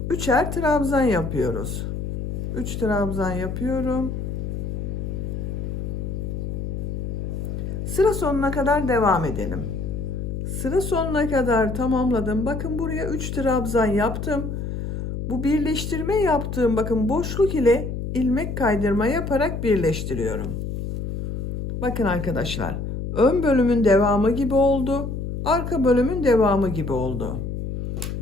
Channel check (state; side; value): noise; left; hum, 4 dB below the sound